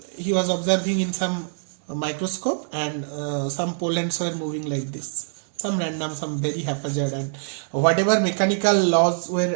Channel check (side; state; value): left; silent; digital silence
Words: he was observing in some microscope, and some pollens were moving like this, some random, some very haphazard, and whatever mechanical laws were